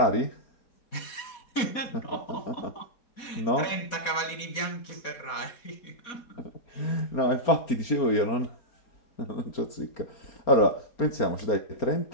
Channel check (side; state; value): right; late; 4.1 ms